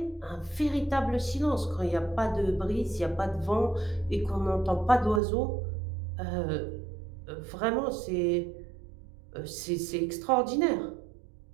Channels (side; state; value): left; drops out; at 5.2 s